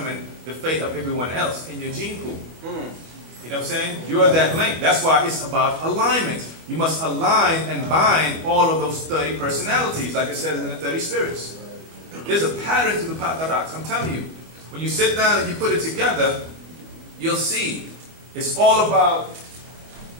the fate of everyone else in your gene pool. You know what I'm saying? You're that link. That's why it's about alignment. You must align and bind all of those 30 personalities, like it says in the 30 spirits. There's a pattern to the Pataraks. I'm telling you. When you sit down and you put it together, you'll see it's all about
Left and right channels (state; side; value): late; left; 25 ms